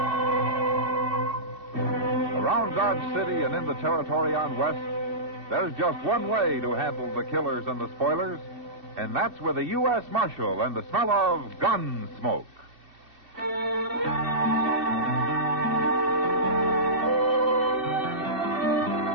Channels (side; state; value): left; late; 2.7 ms